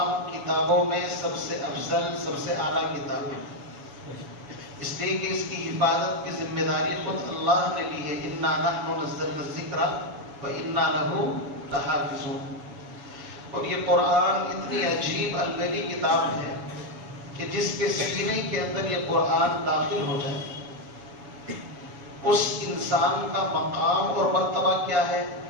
کتابوں میں سب سے افضل، سب سے اعلیٰ کتاب ہے، اس لیے کہ اس کی حفاظت کی ذمہ داری خود اللہ نے لی ہے۔ اِنَّا نَحْنُ نَزَّلْنَا الذِّكْرَ وَإِنَّا لَهُ لَحَافِظُونَ۔ اور یہ قرآن اتنی عجیب الگلی کتاب ہے کہ جس کے سینے کے اندر یہ قرآن داخل ہو جائے، اس انسان کا مقام اور مرتبہ کیا ہے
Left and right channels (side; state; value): left; late; 7.1 ms